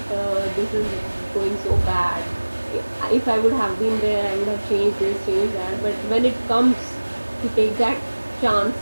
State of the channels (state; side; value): inverted; both; correlation -1.00